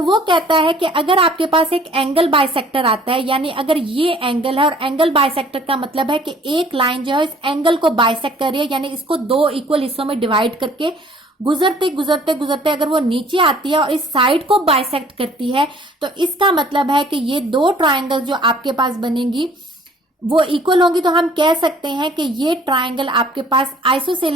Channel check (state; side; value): normal; both; correlation 0.55